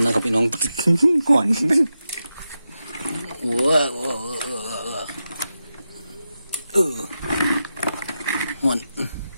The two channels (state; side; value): inverted; both; correlation -0.90